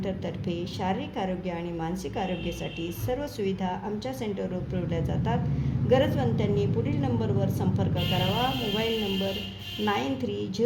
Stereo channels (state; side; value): identical; both; correlation 1.00